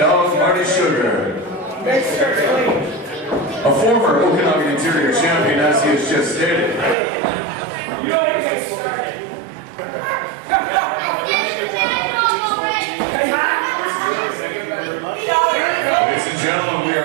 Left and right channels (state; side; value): drops out; left; at 7.0 s